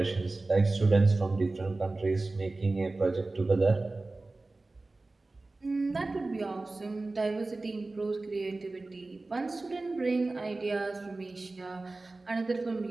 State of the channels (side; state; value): left; quieter; 3.2 dB